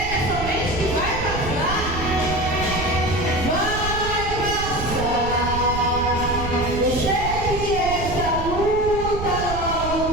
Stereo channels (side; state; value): right; noise; rumble, 6 dB below the sound